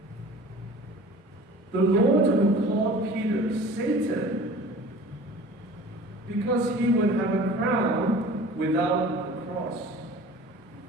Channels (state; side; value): normal; both; correlation 0.43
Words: The Lord who called Peter Satan because he would have a crown without the cross,